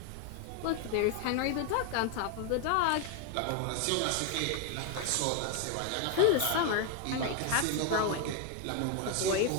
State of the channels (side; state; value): both; different; correlation 0.01